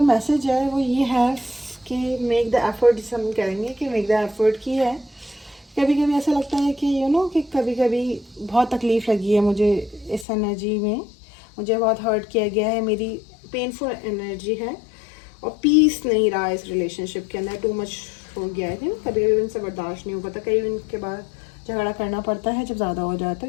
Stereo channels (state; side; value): drops out; right; at 10.2 s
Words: मैसेज है वो ये है कि मेक द एफर्ट, जिसे हम कहेंगे कि मेक द एफर्ट की है। कभी कभी ऐसा लगता है कि कि कभी कभी बहुत तकलीफ़ लगी है मुझे इस एनर्जी में, मुझे बहुत हर्ट किया गया है, मेरी पेनफुल एनर्जी है और पीस नहीं रहा इस रिलेशनशिप के अंदर, टू मच हो गया है, कभी कभी उनसे बर्दाश्त नहीं हो पाता, कई उनके बाद झगड़ा करना पड़ता है जब ज़्यादा हो जाता